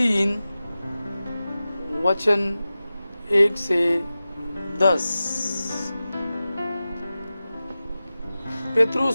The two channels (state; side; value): inverted; both; correlation -0.94